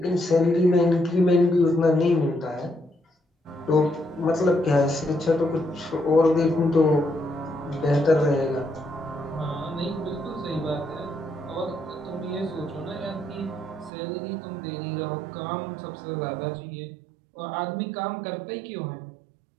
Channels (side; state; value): left; drops out; at 13.9 s